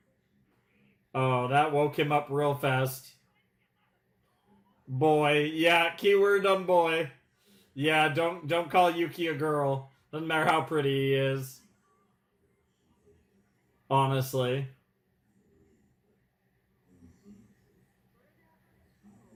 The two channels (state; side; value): identical; both; correlation 1.00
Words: Oh, that woke him up real fast. Boy, yeah, keyword on boy. Yeah, don't call Yuki a girl. Doesn't matter how pretty he is. Honestly.